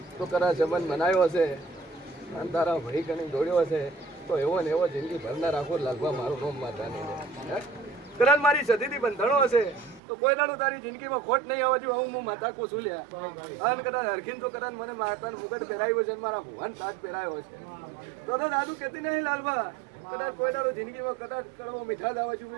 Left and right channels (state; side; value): drops out; left; at 10.0 s